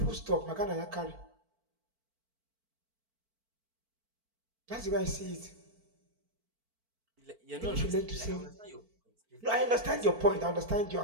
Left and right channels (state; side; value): late; left; 4.5 ms